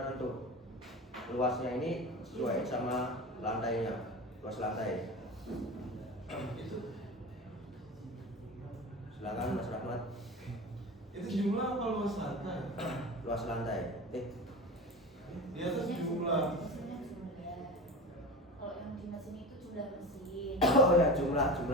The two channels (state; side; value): normal; both; correlation 0.30